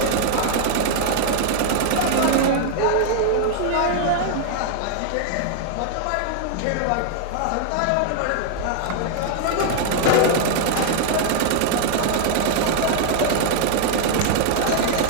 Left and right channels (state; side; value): different; both; correlation 0.00